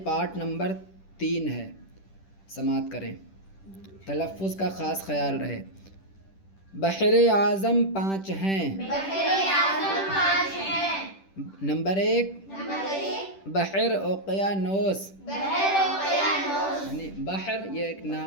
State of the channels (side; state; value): right; late; 10 ms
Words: پارٹ نمبر 3 ہے۔ سماعت کریں، تلفظ کا خاص خیال رہے۔ بحر اعظم 5 ہیں۔ بحر اعظم 5 ہیں۔ نمبر 1 بحر اوقیانوس، بحر اوقیانوس، یعنی بحر یہ ایک